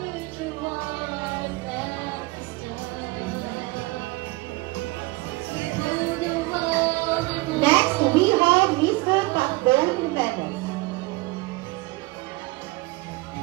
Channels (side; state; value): left; quieter; 22.9 dB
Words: Next we have Mr. Pacbon Jimenez.